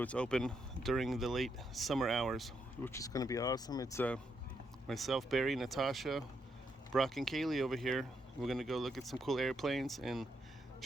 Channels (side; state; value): both; normal; correlation 0.79